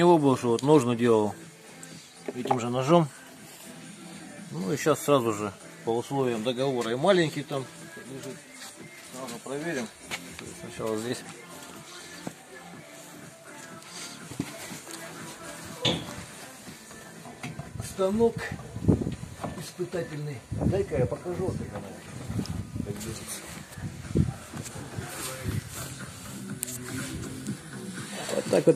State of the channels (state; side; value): identical; both; correlation 1.00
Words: был, что вот ножны делал этим же ножом. Ну и сейчас сразу же по условиям договора. И маленький там лежит. Сразу проверим. Сначала здесь. Станок испытательный. Дай-ка я покажу, как она как держится. Вот так